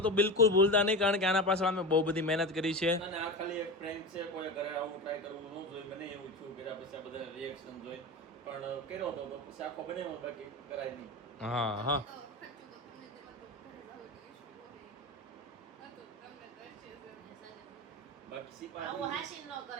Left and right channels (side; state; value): both; normal; correlation 0.24